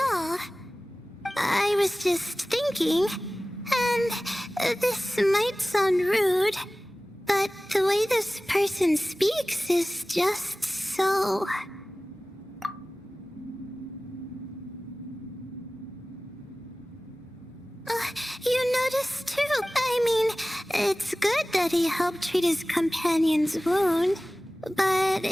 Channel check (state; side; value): normal; both; correlation 0.97